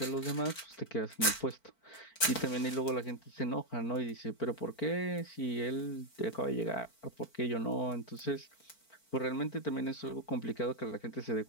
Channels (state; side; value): late; right; 4.5 ms